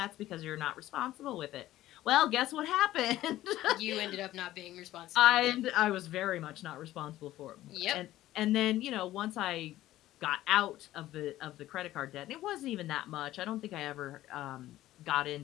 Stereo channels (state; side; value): quieter; right; 14.8 dB